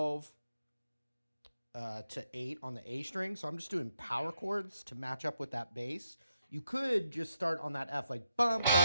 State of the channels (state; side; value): inverted; both; correlation -0.82